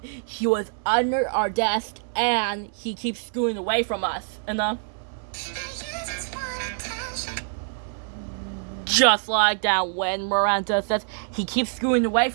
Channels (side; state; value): left; silent; 61 dB below the other